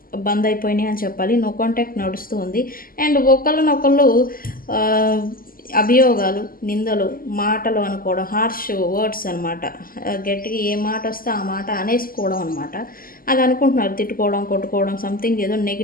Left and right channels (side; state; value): right; late; 0.42 ms